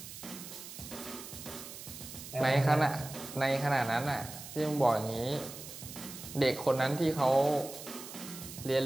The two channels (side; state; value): right; noise; hiss, 12 dB below the sound